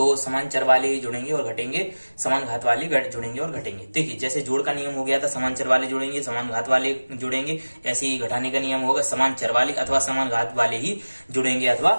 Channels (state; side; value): inverted; both; correlation -1.00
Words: समान चर वाले ही जुड़ेंगे और घटेंगे, समान घात वाले जुड़ेंगे और घटेंगे। देखिए, जैसे जोड़ का नियम हो गया था समान चर वाले जुड़ेंगे समान घात वाले जुड़ेंगे, ऐसे ही घटाने का नियम होगा समान चर वाले अथवा समान घात वाले ही जुड़ेंगे अथवा